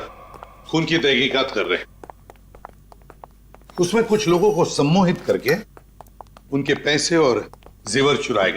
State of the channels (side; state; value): both; identical; correlation 1.00